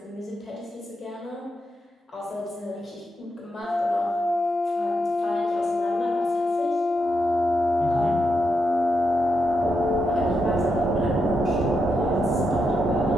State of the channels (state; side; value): normal; both; correlation 0.84